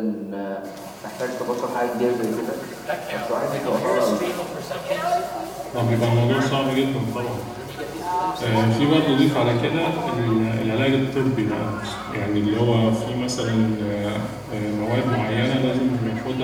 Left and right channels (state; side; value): identical; both; correlation 1.00